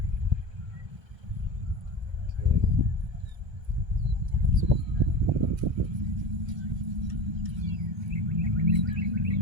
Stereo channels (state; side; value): late; left; 1.3 ms